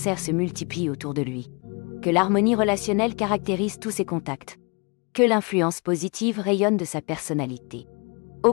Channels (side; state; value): right; quieter; 31.8 dB